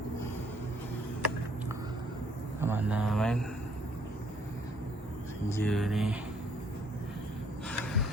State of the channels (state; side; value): normal; both; correlation 0.65